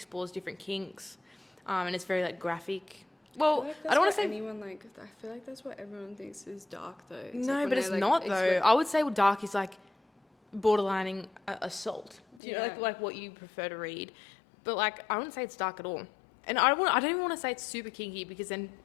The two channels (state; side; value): drops out; right; at 12.4 s